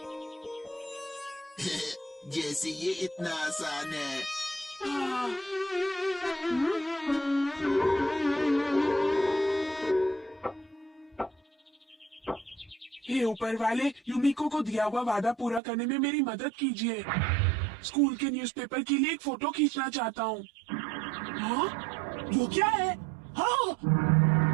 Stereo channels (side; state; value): left; drops out; at 15.6 s